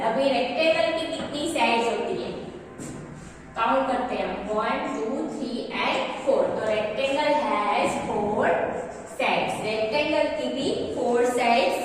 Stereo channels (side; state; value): both; identical; correlation 1.00